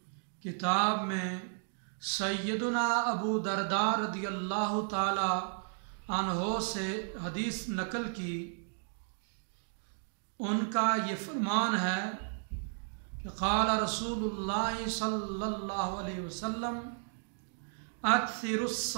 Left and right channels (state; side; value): silent; left; digital silence